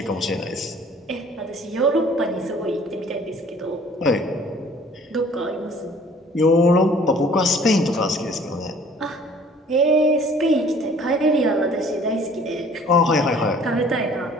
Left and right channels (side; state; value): both; normal; correlation 0.54